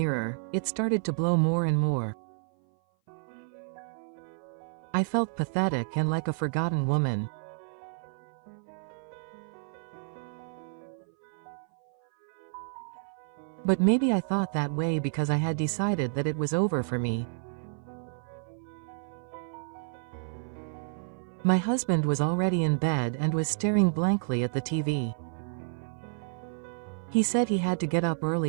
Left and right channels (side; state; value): left; silent; 56 dB below the other